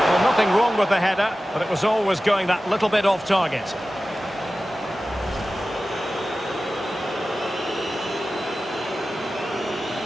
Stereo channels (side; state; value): both; normal; correlation 0.95